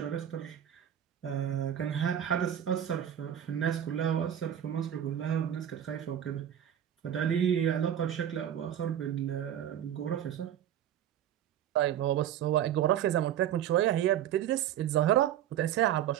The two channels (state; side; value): quieter; left; 10.4 dB